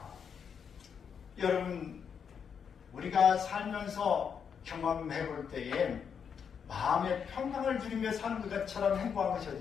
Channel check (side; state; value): right; quieter; 7.1 dB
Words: 여러분 우리가 살면서 경험해 볼 때에 마음의 평강을 누리며 사는 것처럼 행복한 것이